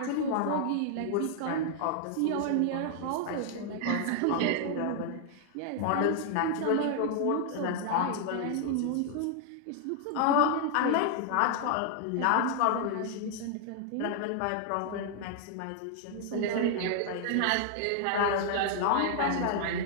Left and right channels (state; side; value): different; both; correlation 0.00